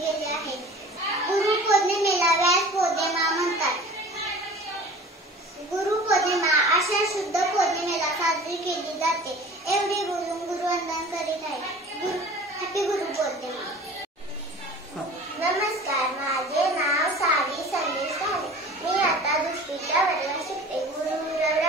गेले आहे. गुरुपौर्णिमेला व्यास पौर्णिमा म्हणतात. गुरुपौर्णिमा आषाढ शुद्ध पौर्णिमेला साजरी केली जाते. एवढे बोलून गुरुवंदन करीत आहे. हॅपी गुरुपौर्णिमा. नमस्कार, माझे नाव सावी संदेश आहे. मी आता 2वीच्या वर्गात शिकते.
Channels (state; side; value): normal; both; correlation 0.42